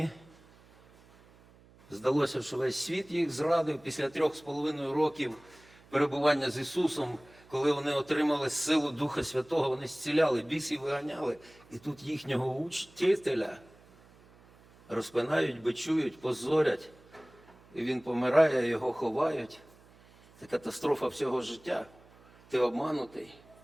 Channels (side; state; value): right; noise; hum, 26 dB below the sound